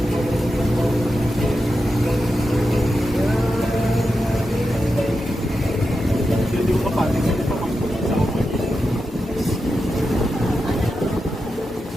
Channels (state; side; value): normal; both; correlation 0.89